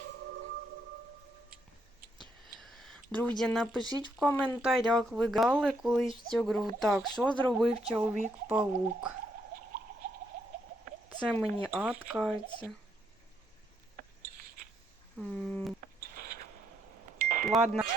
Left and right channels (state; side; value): normal; both; correlation 0.75